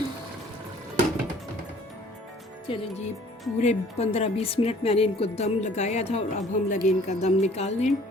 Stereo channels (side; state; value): both; normal; correlation 0.54